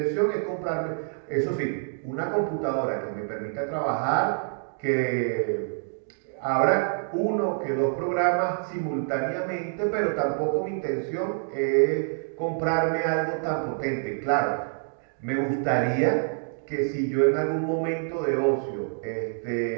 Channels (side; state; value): left; silent; digital silence